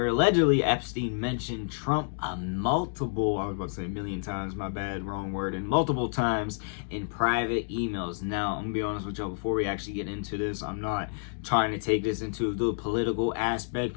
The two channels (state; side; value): silent; right; digital silence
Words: allegedly Epstein mentioned Trump I was about to say a million times, my bad, wrong word, and multiple times in private emails. Now, I'm gonna be honest with y'all, before we actually get into this, I'm not trying to take this into the political aspect,